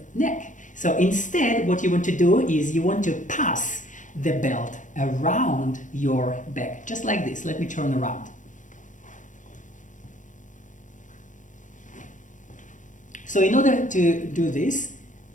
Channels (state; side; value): late; right; 0.37 ms